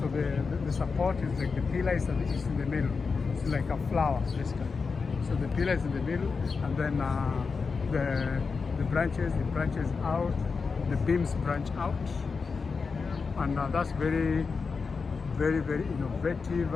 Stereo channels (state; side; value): quieter; right; 4.9 dB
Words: the support is like the pillar is in the middle. It's like a flower basically. So the pillar is in the middle, and then the branches out, the beams branch out. And that's very, very, very